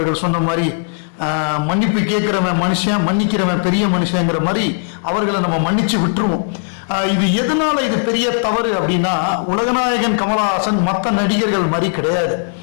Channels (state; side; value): silent; right; 68 dB below the other